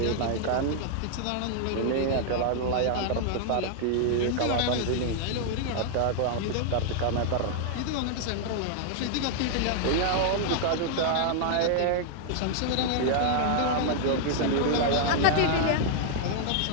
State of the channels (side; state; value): both; different; correlation -0.01